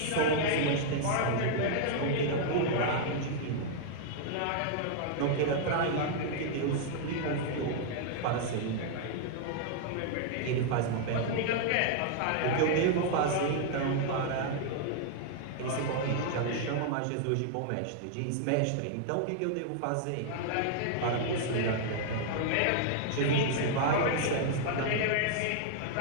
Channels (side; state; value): both; different; correlation -0.01